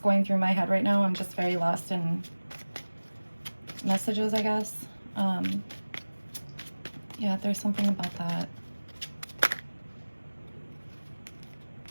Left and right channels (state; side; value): inverted; both; correlation -1.00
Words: through my head right now. I'm just very lost in messages, I guess. Yeah, there's something about that.